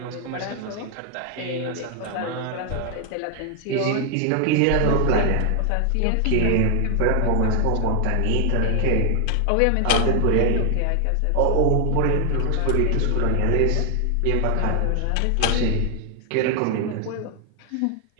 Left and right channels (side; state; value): both; different; correlation 0.00